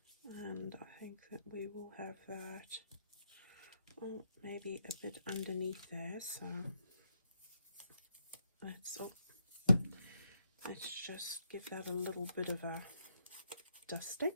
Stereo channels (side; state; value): both; inverted; correlation -0.79